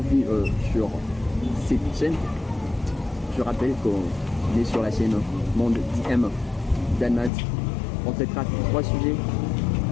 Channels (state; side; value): drops out; right; at 7.3 s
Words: sur cette chaîne. Je rappelle qu'on est sur la chaîne Monde DM d'Anmad. On traitera trois sujets,